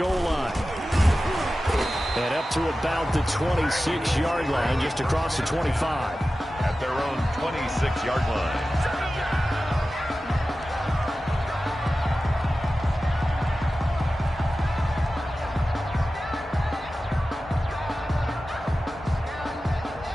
line. And up to about the 26-yard line, just across the 25. At their own 26-yard line.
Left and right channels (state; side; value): normal; both; correlation 0.94